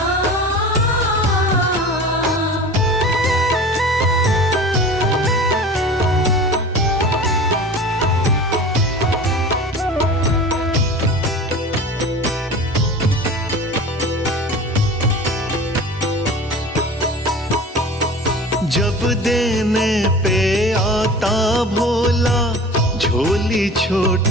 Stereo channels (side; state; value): both; normal; correlation 0.38